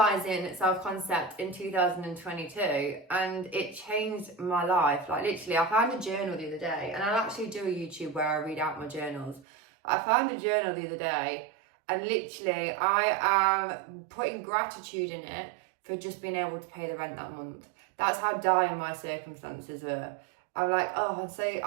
self-concept in 2022, and it changed my life. Literally, I found a journal the other day, and I'll actually do a YouTube where I read out my journals. I found a journal the other day, and literally I am putting gratitude in it for just being able to pay the rent that month. That's how dire my circumstances were. I'm I'm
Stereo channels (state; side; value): drops out; left; at 9.5 s